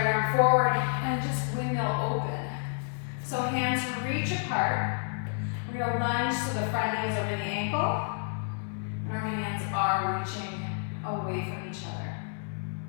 arm forward and just windmill open. So hands reach apart. We're We're gonna lunge so the front knee is over the ankle, and our hands are reaching away from each other.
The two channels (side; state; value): right; silent; digital silence